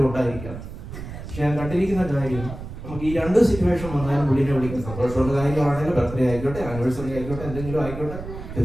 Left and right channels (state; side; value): noise; right; rumble, 10 dB below the sound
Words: ഉണ്ടായിരിക്കാം. പക്ഷെ ഞാൻ കണ്ടിരിക്കുന്ന കാര്യം, നമുക്ക് ഈ രണ്ട് സിറ്റുവേഷൻ വന്നാലും പുള്ളിനെ വിളിക്കുന്ന സന്തോഷമുള്ള കാര്യമാണെങ്കിലും, ബർത്ത്ഡേ ആയിക്കോട്ടെ, ആനിവേഴ്സറി ആയിക്കോട്ടെ, എന്തെങ്കിലും ആയിക്കോട്ടെ,